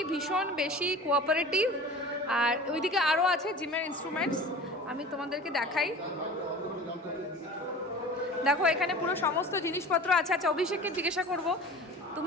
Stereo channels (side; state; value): both; normal; correlation 0.39